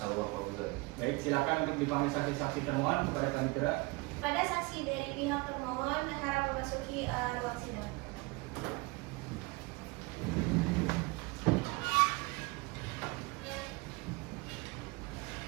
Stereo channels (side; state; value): left; quieter; 25.4 dB